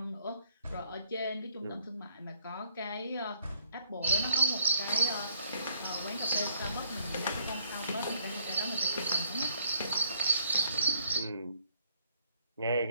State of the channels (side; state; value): both; inverted; correlation -0.67